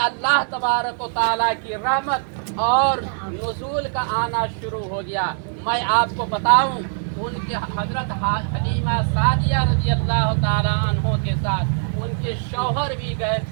तबारक व तआला की रहमत और नुज़ूल का आना शुरू हो गया। मैं आपको बताऊं, उनके हज़रत हलीमा सादिया रज़ी अल्लाह तआला अन्हो के साथ उनके शौहर भी गए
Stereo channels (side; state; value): left; silent; digital silence